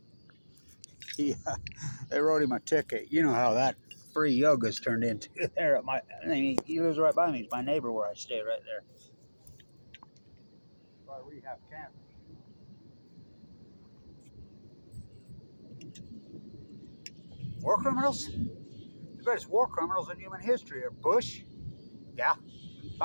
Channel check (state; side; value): inverted; both; correlation -1.00